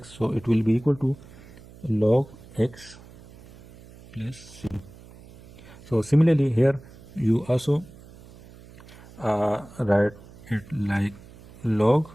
so it will be equal to log x plus c. So similarly here you also write it like log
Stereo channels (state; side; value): noise; right; hum, 21 dB below the sound